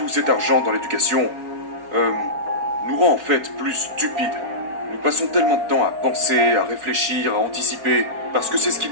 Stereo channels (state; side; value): late; left; 4.4 ms